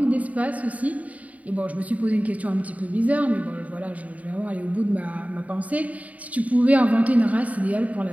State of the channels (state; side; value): late; left; 0.070 ms